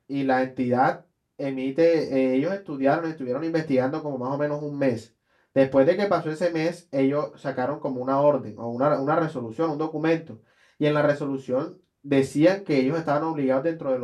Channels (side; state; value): both; identical; correlation 1.00